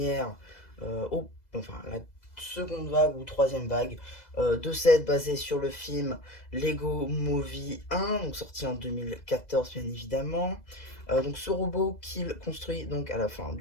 enfin la seconde vague ou troisième vague de set basé sur le film Lego Movie 1, donc sorti en 2014 bien évidemment. Donc ce robot qu'il construit donc à la fin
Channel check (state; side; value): late; right; 2.0 ms